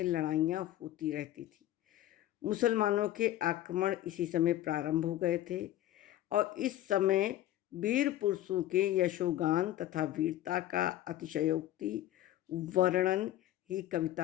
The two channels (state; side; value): quieter; right; 13.7 dB